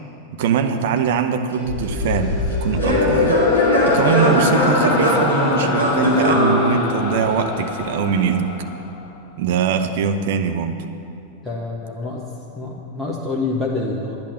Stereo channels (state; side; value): normal; both; correlation -0.12